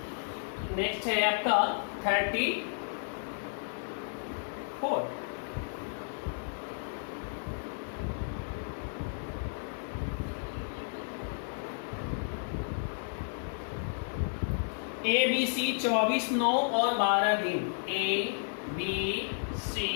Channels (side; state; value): right; silent; 56 dB below the other